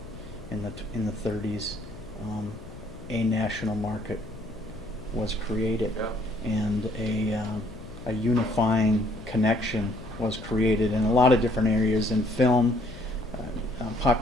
in the 30s, a national market was created, and a unifying connection was created in a lot of different areas, in film,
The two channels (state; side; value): noise; left; hum, 17 dB below the sound